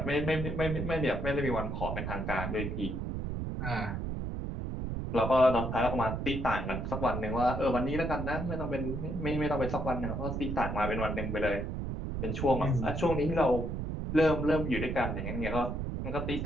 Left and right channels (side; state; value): right; noise; rumble, 3 dB below the sound